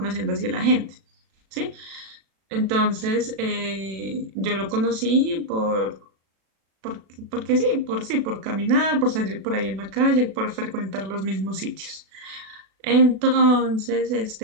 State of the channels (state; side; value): late; left; 36 ms